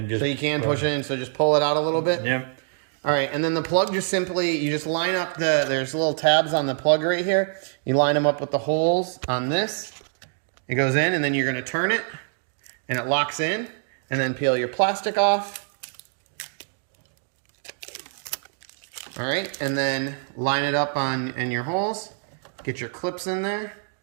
just... So you can push it in, so just pull it out a little bit. Yep. All right, and then the plug you just line up there's little tabs on the plug right here. You line them up with the holes on this. It goes in, and then you're going to turn it, and it locks in, and then peel your plastic off. All right, and then line it up in your holes. Get your clips in there.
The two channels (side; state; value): left; silent; digital silence